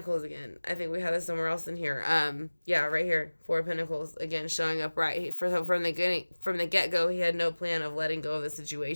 again. I think we have this somewhere else in here. Yeah, right here. Four of Pentacles again showing up right from the get go. He had no plan of letting go of the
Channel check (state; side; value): inverted; both; correlation -1.00